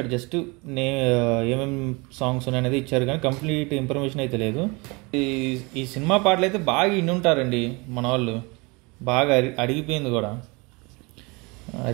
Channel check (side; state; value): left; quieter; 27.6 dB